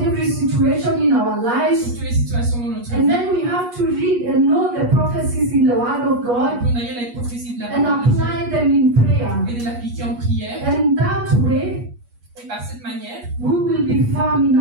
situation in our lives. Sur toutes les situations dans notre vie. And then we have to read and know the prophecies in the Word of God. On doit lire les prophéties de la and apply them in prayer. Et de l'appliquer en prière. And that way, Et par cette manière, we will be firm in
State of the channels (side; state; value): left; late; 8.3 ms